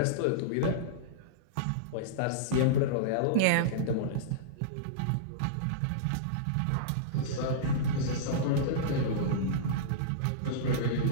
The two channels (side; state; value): both; different; correlation -0.03